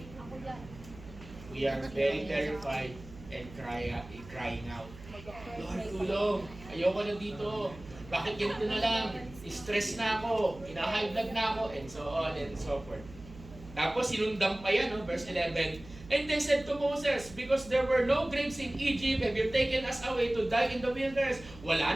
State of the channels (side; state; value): right; noise; hum, 17 dB below the sound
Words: we are very terrified and crying out. Lord, tulong. Ayoko na dito. Bakit ganito na lang? Stress na ako. High blood na ako. And so on and so forth. Tapos sinundan pa yan, no? Verse 11. And they said to Moses, because there were no graves in Egypt, have you taken us away to die in the wilderness? Wala